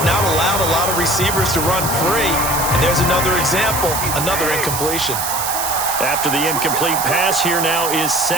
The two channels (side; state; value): right; noise; hiss, 3 dB below the sound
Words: not allowed a lot of receivers to run free. And there's another example, another incompletion. After the incomplete pass, here now is